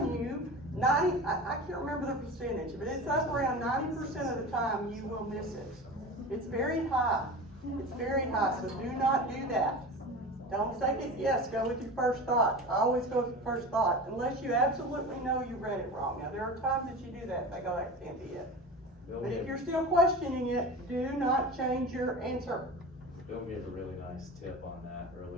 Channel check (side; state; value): both; normal; correlation 0.32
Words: you, I can't remember the percentage, but it's up around 90% of the time you will miss it. It's very high. It's very high, so do not do that. Don't second guess, go with your first thought. I always go with your first thought, unless you absolutely know you read it wrong. Now, there are times that you do that, they go, that can't be it. But if you're still questioning it, do not change your answer. Bill gave a really nice tip on that